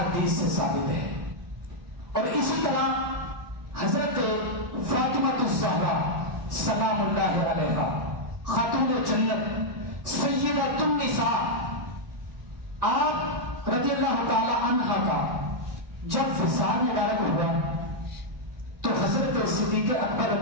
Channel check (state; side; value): late; left; 1.9 ms